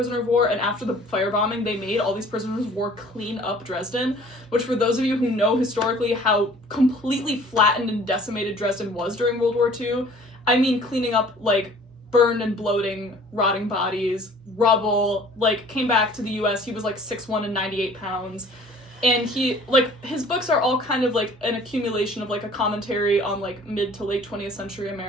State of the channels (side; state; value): both; normal; correlation 0.51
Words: of war, and after the firebombing they made all these prisoners of war clean up Dresden, which for those of you who know historically how completely flattened and decimated Dresden was during World War II, I mean cleaning up like burned and bloating, rotting bodies, rubble, like came back to the US, he was like 6'1" and 98 pounds. And he, like, his books are all kind of, like, an accumulation of, like, a commentary on, like, mid to late 20th century